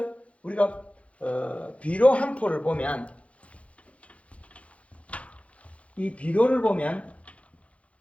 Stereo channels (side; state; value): right; late; 0.063 ms